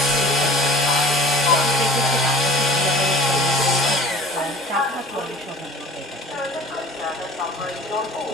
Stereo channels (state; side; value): normal; both; correlation 0.44